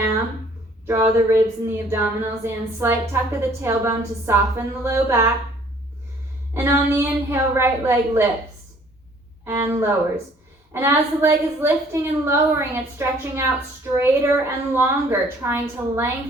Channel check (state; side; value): normal; both; correlation 0.57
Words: Draw the ribs and the abdominals in. Slight tuck of the tailbone to soften the low back. And on the inhale, right leg lifts and lowers. And as the leg is lifting and lowering, it's stretching out straighter and longer, trying to